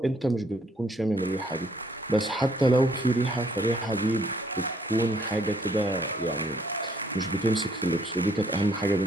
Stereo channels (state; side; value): normal; both; correlation 0.66